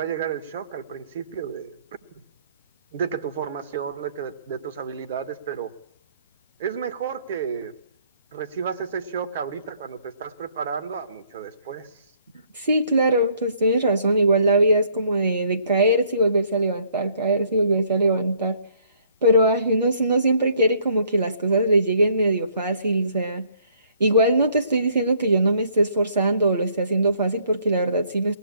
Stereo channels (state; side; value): inverted; both; correlation -0.64